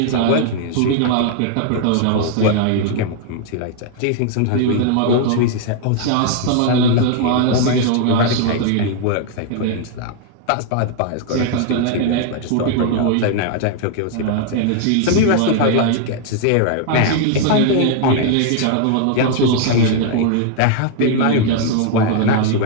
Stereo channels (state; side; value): different; both; correlation 0.00